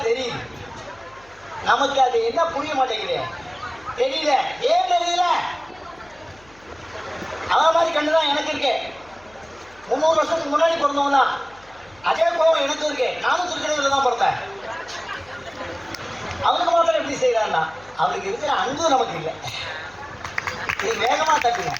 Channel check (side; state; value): left; noise; hum, 27 dB below the sound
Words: தெரியுது நமக்கு அது என்ன புரிய மாட்டேங்குது தெரியல ஏன் தெரியல அவன் மாதிரி கண்டுதான் எனக்கு இருக்கு 300 வருஷத்துக்கு முன்னாடி பிறந்தவன் தான் அதே கோவம் எனக்கு இருக்கு நானும் திருக்கடையில தான் பிறந்தேன் அவனுக்கு மாத்திரம் எப்படி செய்யறான்னா அவனுக்கு இருக்கிற அன்பு நமக்கு இல்லை இது வேகமா தட்டுங்க